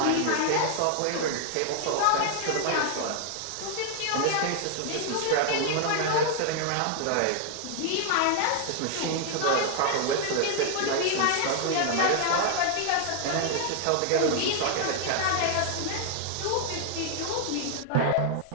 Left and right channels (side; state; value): both; different; correlation 0.00